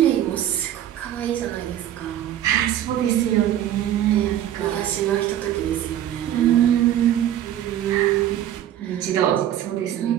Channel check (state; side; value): quieter; left; 11.5 dB